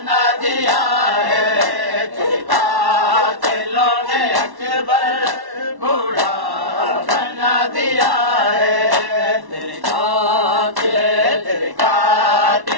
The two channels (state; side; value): late; left; 1.1 ms